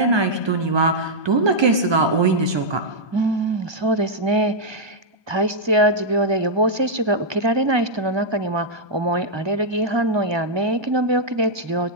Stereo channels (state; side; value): late; left; 1.2 ms